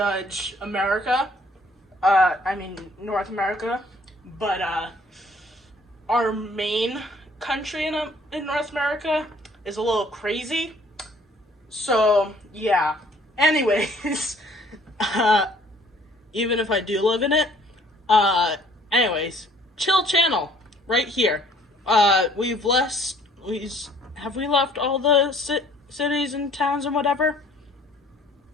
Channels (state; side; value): normal; both; correlation 0.58